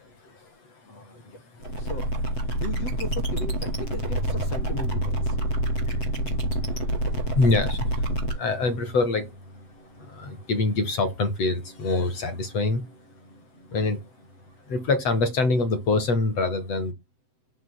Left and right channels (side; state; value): right; late; 7.8 ms